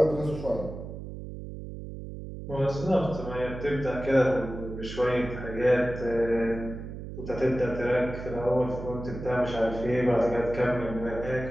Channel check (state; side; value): noise; right; hum, 10 dB below the sound